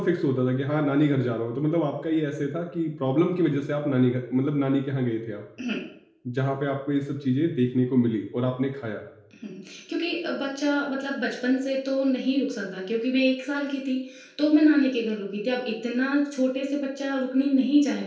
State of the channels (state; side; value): identical; both; correlation 1.00